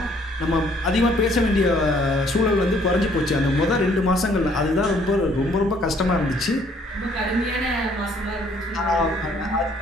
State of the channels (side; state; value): both; normal; correlation 0.62